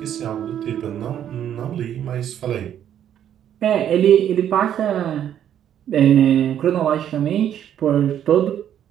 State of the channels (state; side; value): quieter; left; 10.1 dB